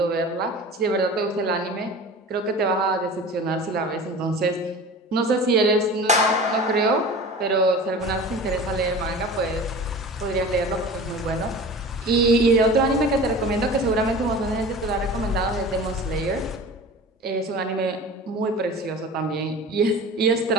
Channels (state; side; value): normal; both; correlation 0.37